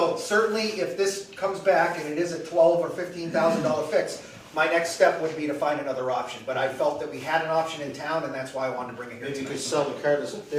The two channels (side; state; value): both; identical; correlation 1.00